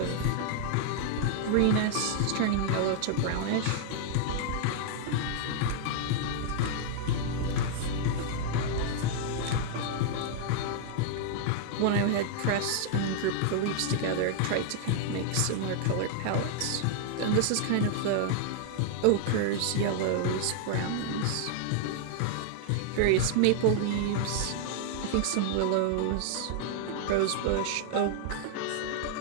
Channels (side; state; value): both; different; correlation -0.01